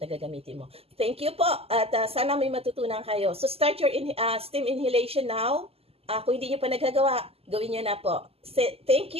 gagamitin mo. Thank you po at sana may matutunan kayo. So start your steam inhalation now. Kung hindi nyo pa nagagawa, gawin nyo na po. Thank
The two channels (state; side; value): late; left; 0.29 ms